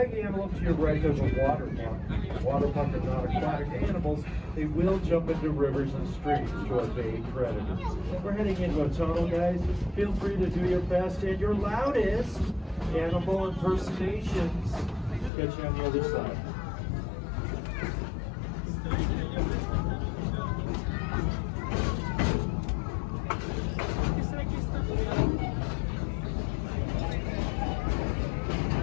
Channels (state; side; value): drops out; right; at 15.3 s